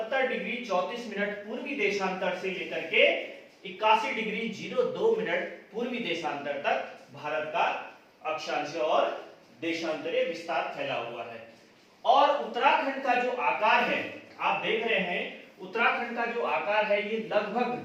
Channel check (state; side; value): identical; both; correlation 1.00